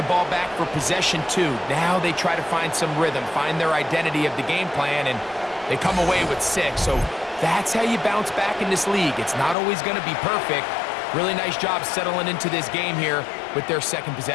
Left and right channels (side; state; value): right; drops out; at 9.6 s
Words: ball back for possession 2. Now they try to find some rhythm, find their identity of the game plan, and they come away with 6. So that's how you bounce back in this league. It's not always going to be perfect. Really nice job settling into this game here with their second